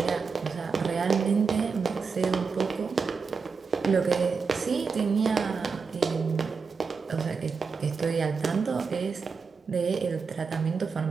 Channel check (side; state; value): left; quieter; 5.2 dB